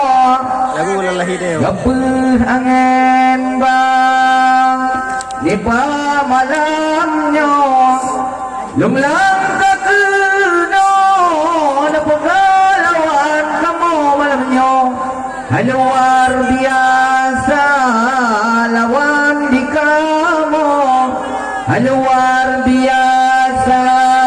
Lagu lalahi dia. gapuh angin bang di malamnya lumlang pengalaman kamu malamnya luar biasa lawan di kamu luar biasa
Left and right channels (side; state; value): both; identical; correlation 1.00